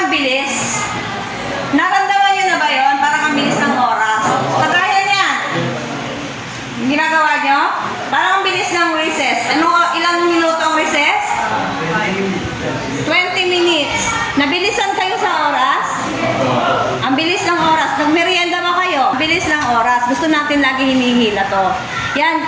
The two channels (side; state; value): both; identical; correlation 1.00